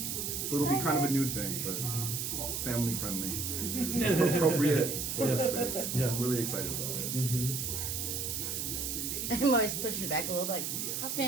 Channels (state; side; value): noise; right; hiss, 2 dB below the sound